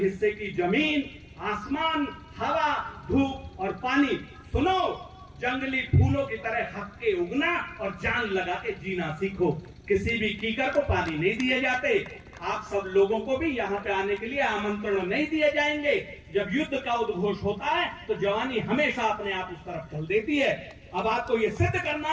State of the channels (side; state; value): both; identical; correlation 1.00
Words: की जमीन, आसमान, हवा, धूप और पानी। सुनो, जंगली फूलों की तरह हक के उगना और जान लगा के जीना सीखो। किसी भी कीकर को पानी नहीं दिए जाते। आप सब लोगों को भी यहाँ पे आने के लिए आमंत्रण नहीं दिए जाएंगे। जब युद्ध का उद्घोष होता है तो जवानी हमेशा अपने आप उस तरफ चल देती है। अब आपको ये सिद्ध करना